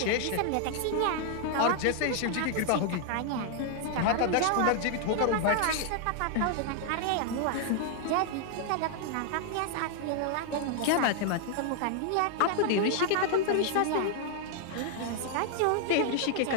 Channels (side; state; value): both; different; correlation 0.00